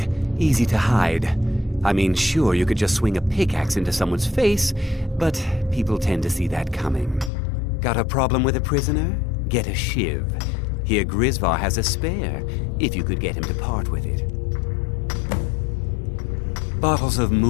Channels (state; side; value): drops out; right; at 7.3 s